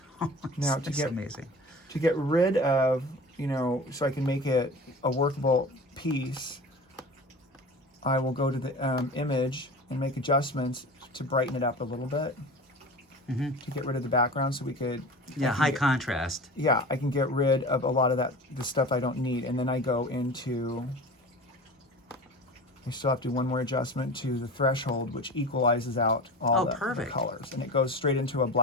Now that's amazing. To get rid of, so I can make it a workable piece, I will go to the image and make adjustments to brighten it up a little bit. To get rid of the background, so we could. Yeah, high contrast. Yeah, I can get rid of a lot of the stuff I don't need, and then I go into. I still have to do one more adjustment to the threshold, which equalizes out all the colors, and it goes straight into a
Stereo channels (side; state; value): both; normal; correlation 0.35